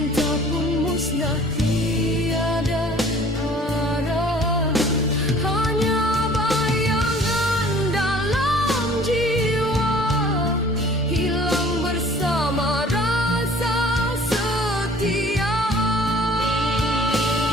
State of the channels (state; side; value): normal; both; correlation 0.51